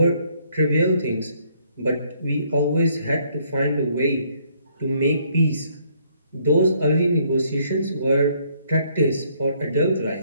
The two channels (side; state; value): both; inverted; correlation -0.67